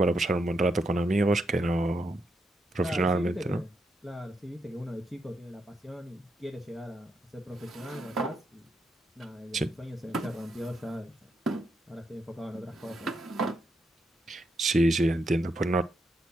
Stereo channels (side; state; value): both; normal; correlation 0.81